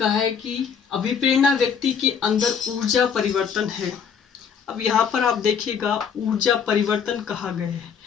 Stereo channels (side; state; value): right; quieter; 6.9 dB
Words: है कि अभिप्रेरणा व्यक्ति के अंदर ऊर्जा परिवर्तन है। अब यहाँ पर आप देखिएगा, ऊर्जा परिवर्तन कहा गया है,